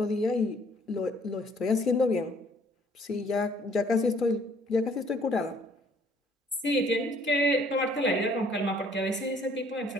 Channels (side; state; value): both; normal; correlation 0.60